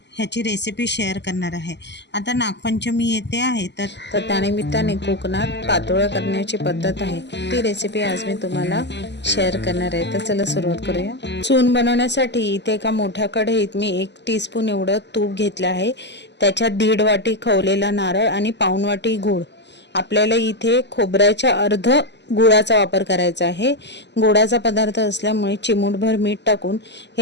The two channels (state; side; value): late; right; 0.50 ms